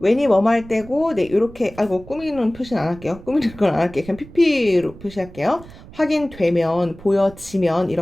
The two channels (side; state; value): right; noise; rumble, 19 dB below the sound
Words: 뭐뭐 할 때고, 네, 요렇게, 아이고, 꾸미는 표시는 안 할게요. 꾸미는 건 안 할게요. 그냥 PP로 표시할게요. 확인되면, 보여지면,